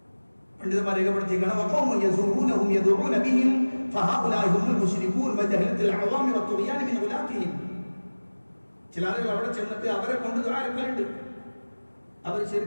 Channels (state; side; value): inverted; both; correlation -1.00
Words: പണ്ഡിതന്മാർ രേഖപ്പെടുത്തിയിരിക്കണം, വഖൗമുൻ യസൂറൂനഹും യദഊന ബിഹിം ഫഹഉലാഇ ഹുമുൽ മുശ്രികൂൻ വജഹലത്തുൽ അവാമി വത്തുഗ്യാനി മിൻ ഉലാതിഹിം. ചില ആളുകൾ അവിടെ ചെന്നിട്ട് അവരെ കൊണ്ട് ദുആ എടുക്കലുണ്ട്. അവർ